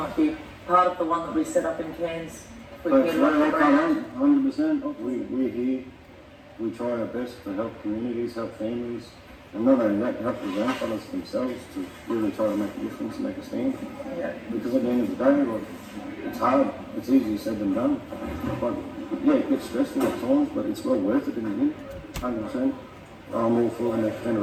be part of the one that we set up in Cairns. But 100%. We're here. We try our best to help communities, help families, And not only that, help the grandfathers themselves to really try to make a difference and make a stand. Because at the end of the day, like, it's hard. It's easier said than done. But yeah, it gets stressful at times, but it's well worth it in the end. 100%. I'm all for the next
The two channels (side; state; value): both; identical; correlation 1.00